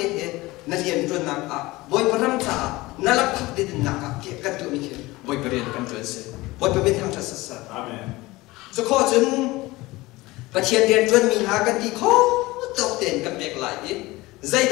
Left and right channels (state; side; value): quieter; right; 20.3 dB